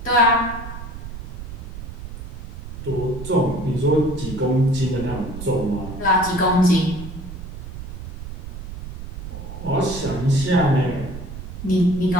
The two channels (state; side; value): noise; right; rumble, 9 dB below the sound